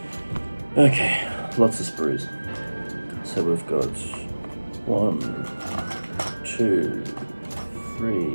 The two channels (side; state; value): both; inverted; correlation -1.00